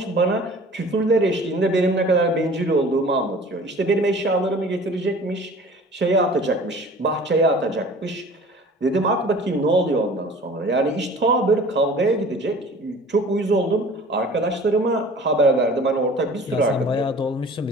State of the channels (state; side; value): normal; both; correlation 0.45